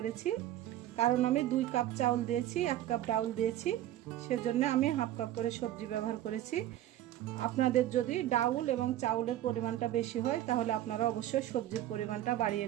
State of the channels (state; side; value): quieter; left; 13.2 dB